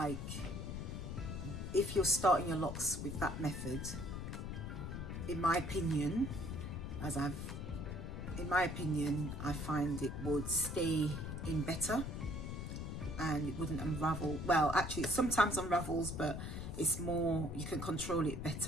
if you're starting your locks with that method, in my opinion, I find it would stay in better and it wouldn't unravel. Well, actually, it sometimes unravels, but it's more, you can control it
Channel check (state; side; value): noise; left; rumble, 5 dB below the sound